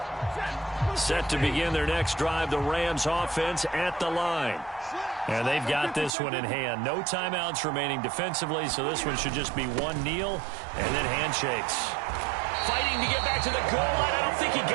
Set to begin their next drive, the Rams offense at the line. And they've got this one in hand. No timeouts remaining defensively, so this one should just be one kneel and then handshakes. Fighting to get back to the goal line. I don't think he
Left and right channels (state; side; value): drops out; left; at 6.1 s